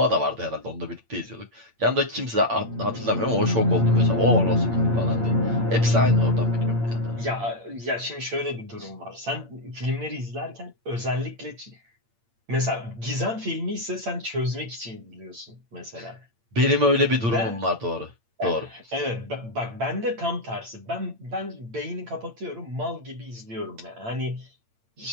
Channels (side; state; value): left; late; 8.8 ms